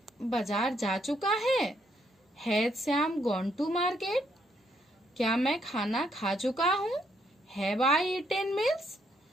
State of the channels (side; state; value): both; normal; correlation 0.73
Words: बाजार जा चुका है, has Shyam gone to market. क्या मैं खाना खा चुका हूँ, हैव आई ईटेन मील्स।